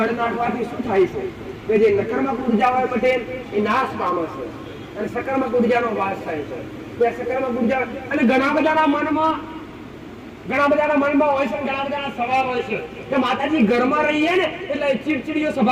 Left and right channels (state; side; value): identical; both; correlation 1.00